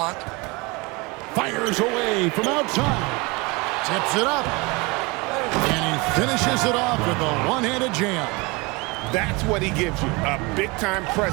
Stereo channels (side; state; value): left; quieter; 26.1 dB